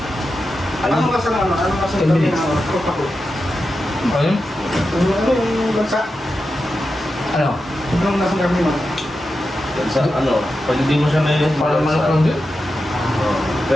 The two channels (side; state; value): both; normal; correlation 0.90